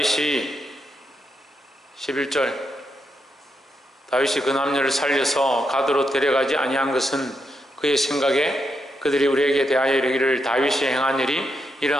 11절, 다윗이 그 남녀를 살려서 가드로 데려가지 아니한 것은 그의 생각에 그들이 우리에게 대하여 이르기를 다윗이 행한 일이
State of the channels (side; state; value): both; normal; correlation 0.82